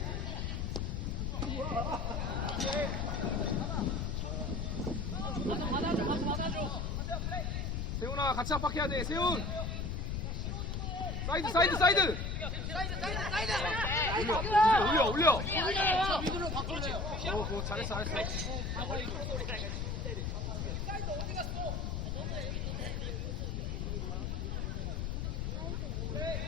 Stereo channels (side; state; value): left; noise; rumble, 1 dB below the sound